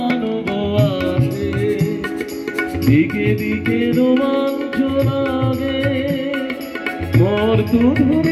আসে, দিকে দিকে রোমাঞ্চ লাগে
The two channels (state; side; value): identical; both; correlation 1.00